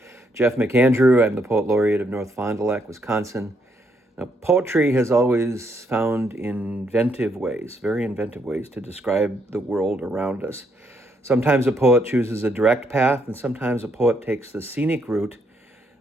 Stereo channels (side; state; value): both; normal; correlation 0.74